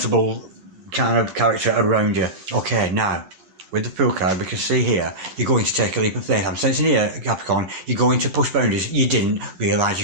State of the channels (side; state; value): left; late; 10 ms